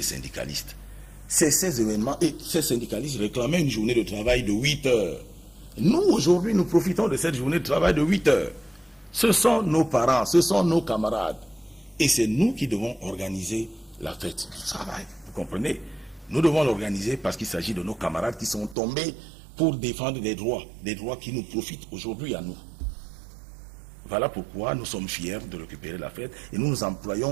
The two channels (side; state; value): left; drops out; at 18.8 s